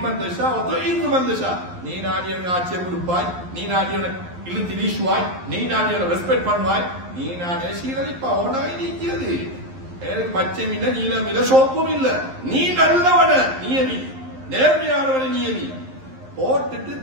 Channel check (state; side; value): late; left; 11 ms